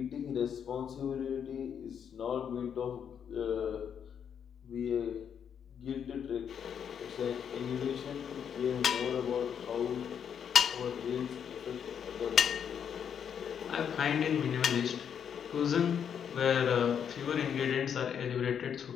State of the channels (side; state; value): right; quieter; 8.0 dB